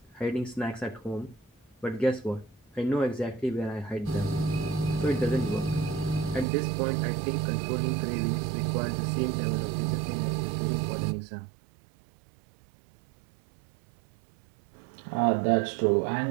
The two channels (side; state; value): left; drops out; at 6.5 s